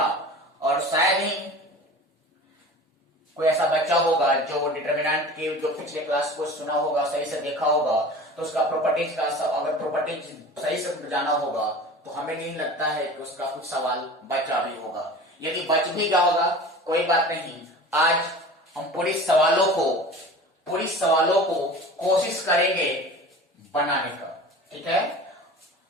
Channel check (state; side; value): normal; both; correlation 0.38